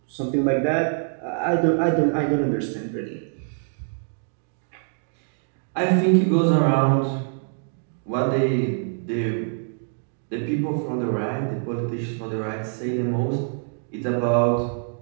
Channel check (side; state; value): left; silent; digital silence